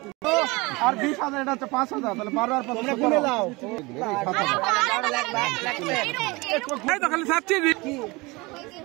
আর 20,000 এটা হচ্ছে 5,000 তাহলে 12 আর 5 গুনে নাও এই তো খালি সাচ্ছি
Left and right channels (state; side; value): quieter; left; 24.3 dB